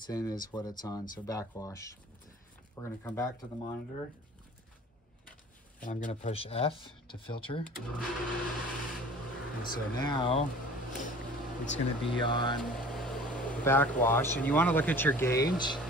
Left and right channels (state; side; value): normal; both; correlation 0.45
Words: in is what it's on, so backwash. We're going to come back to the monitor. And I'm going to push F to filter. And so now it's going to be on backwash. And you want to look at your gauge.